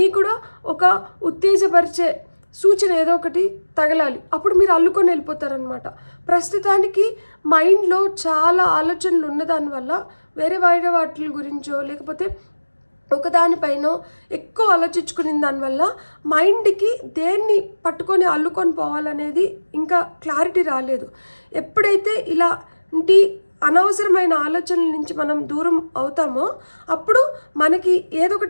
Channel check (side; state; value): both; inverted; correlation -1.00